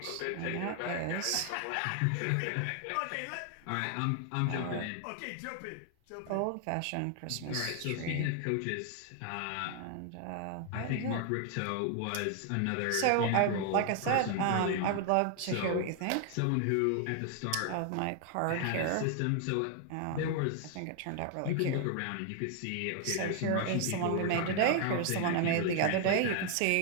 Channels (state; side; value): different; both; correlation 0.00